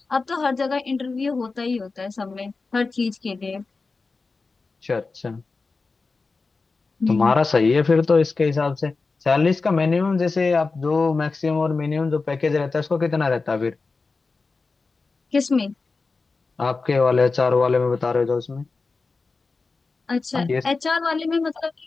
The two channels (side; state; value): right; quieter; 4.1 dB